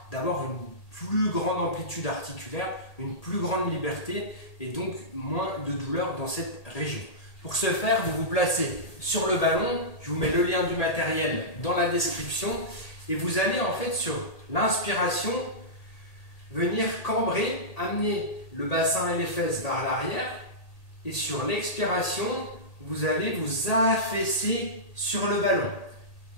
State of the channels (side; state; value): right; late; 1.8 ms